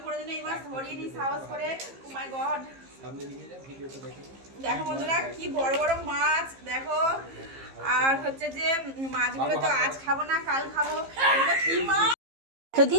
কোনোদিন এই মাছ ধরিনি সাহস করে। ও মাই গড, দেখো বন্ধুরা কি বড় বড় মাছ দেখো। আর হচ্ছে যে মাছগুলো তো আজ খাবো না, কাল খাবো।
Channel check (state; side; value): late; left; 15 ms